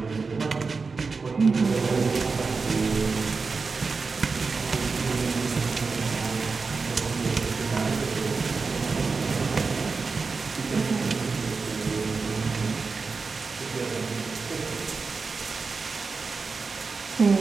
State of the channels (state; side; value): quieter; left; 4.5 dB